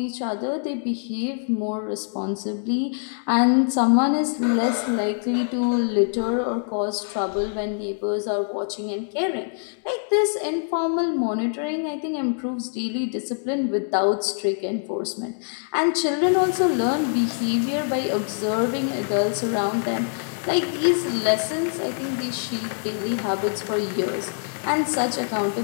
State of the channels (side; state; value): right; silent; digital silence